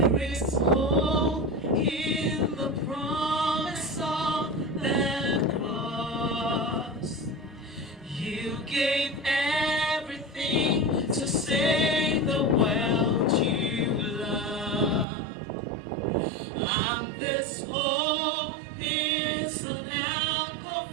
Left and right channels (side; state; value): left; drops out; at 15.1 s